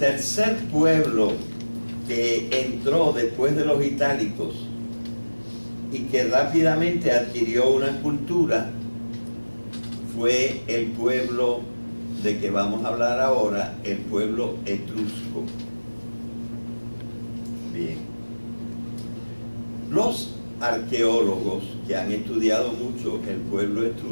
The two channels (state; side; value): inverted; both; correlation -1.00